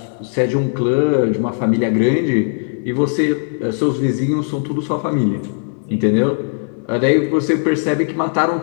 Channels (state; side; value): silent; right; 67 dB below the other